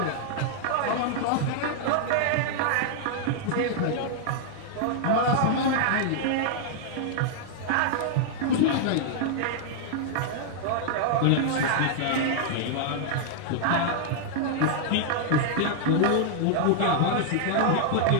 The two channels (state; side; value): different; both; correlation -0.01